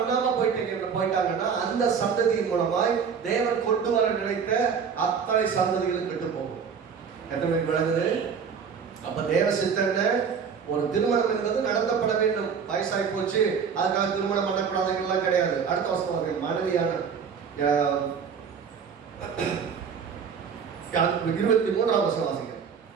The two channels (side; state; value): left; quieter; 6.5 dB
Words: போயிட்டாங்கன்னா அந்த சந்ததியின் மூலமாய் தேவன் கொண்டு வர நினைத்த அத்தனை சந்ததிகளும் கெட்டு போகும். எத்தனை விளங்குது? அப்ப தேவ சித்தன ஒரு திருமணம் என்பது நடத்தப்பட வேண்டும். வயசாகி போச்சு அதுக்காக திருமணம் பண்ணக்கூடாதுலாம் கிடையாது. அடுத்த வருஷம் மனைவியான 23ஆம் வசனம் வாசிங்க.